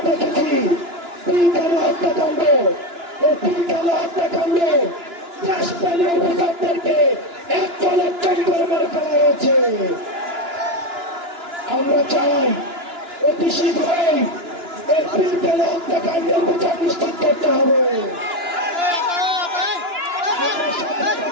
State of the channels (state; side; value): late; left; 2.9 ms